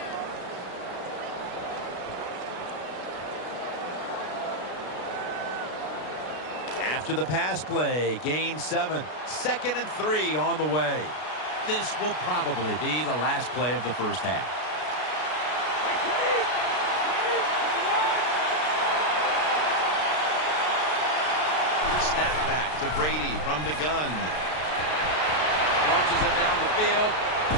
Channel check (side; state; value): right; late; 33 ms